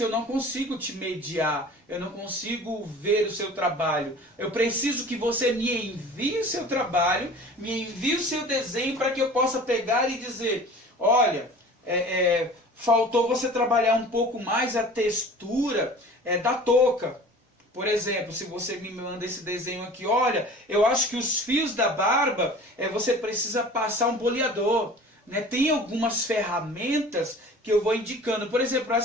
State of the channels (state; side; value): normal; both; correlation 0.42